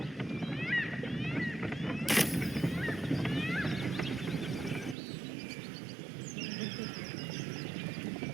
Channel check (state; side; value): drops out; left; at 5.0 s